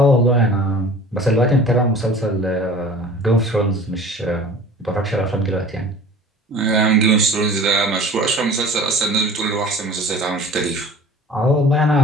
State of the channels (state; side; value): normal; both; correlation 0.43